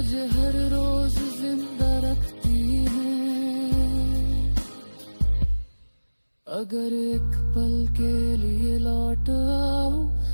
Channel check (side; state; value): both; inverted; correlation -1.00